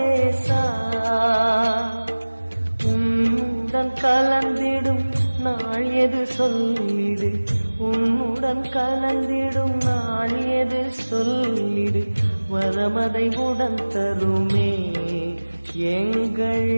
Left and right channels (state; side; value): inverted; both; correlation -1.00